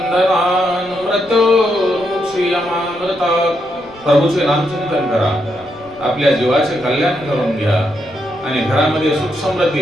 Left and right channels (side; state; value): left; noise; rumble, 25 dB below the sound